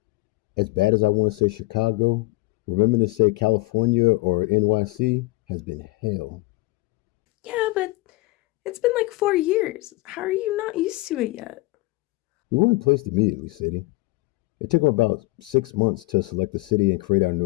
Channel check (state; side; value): quieter; right; 21.9 dB